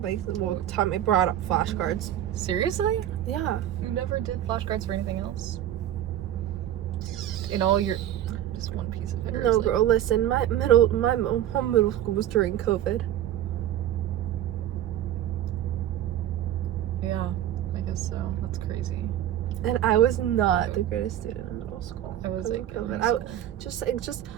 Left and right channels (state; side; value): quieter; left; 11.8 dB